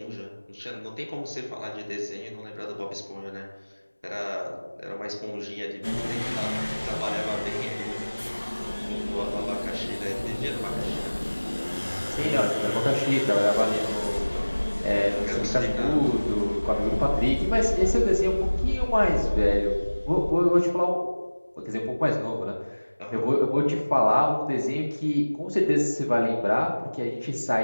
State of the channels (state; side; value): inverted; both; correlation -1.00